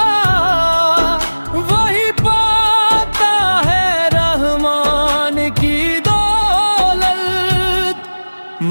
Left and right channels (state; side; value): inverted; both; correlation -1.00